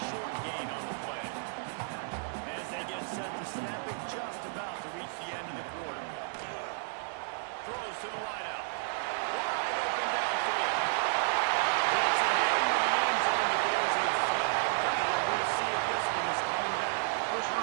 short gain on the play. As they get set to snap it, just about to reach the end of the quarter. Throws to the wideout. Wide open downfield. Gets it into the end zone, but there's a flag down. We'll see if this one is coming back.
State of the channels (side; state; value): left; silent; digital silence